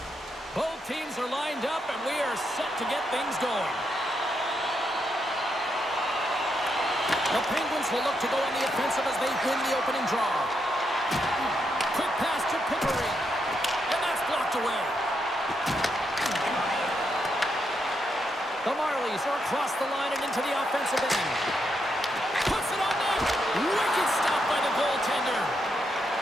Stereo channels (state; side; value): normal; both; correlation 0.81